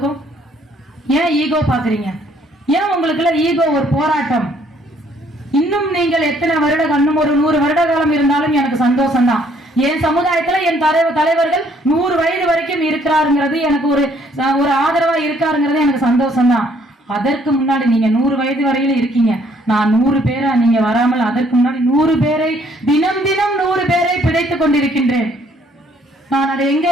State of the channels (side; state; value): both; normal; correlation 0.64